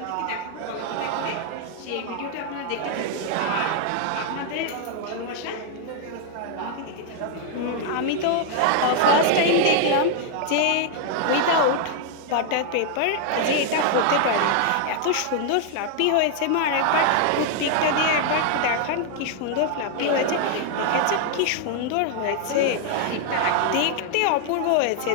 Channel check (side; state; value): both; different; correlation 0.00